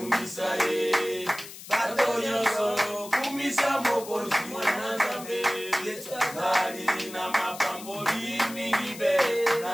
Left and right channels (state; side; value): noise; left; hiss, 14 dB below the sound